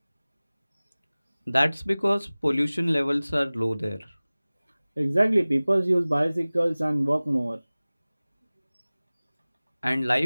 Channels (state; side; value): inverted; both; correlation -0.99